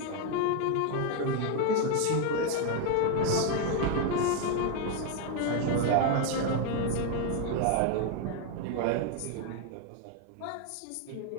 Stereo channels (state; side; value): different; both; correlation 0.01